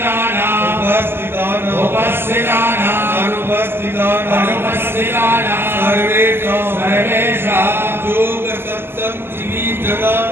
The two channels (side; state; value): left; late; 0.11 ms